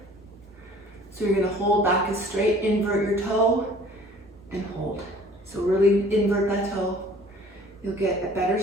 So you're gonna hold back as straight, invert your toe, and hold. So really invert that toe. You'll get a better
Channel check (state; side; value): normal; both; correlation 0.51